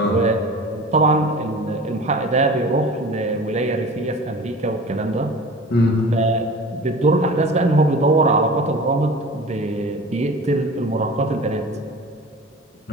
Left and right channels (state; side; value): normal; both; correlation 0.38